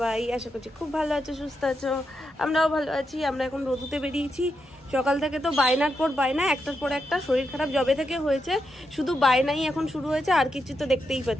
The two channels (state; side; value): normal; both; correlation 0.85